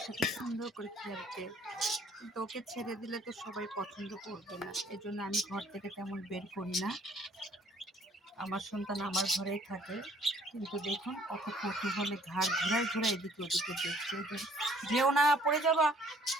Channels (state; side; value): normal; both; correlation 0.59